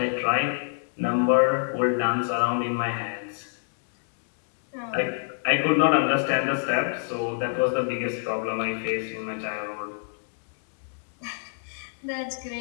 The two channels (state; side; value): silent; right; digital silence